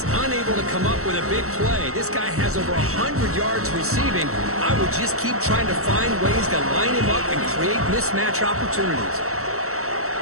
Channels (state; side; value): late; left; 0.64 ms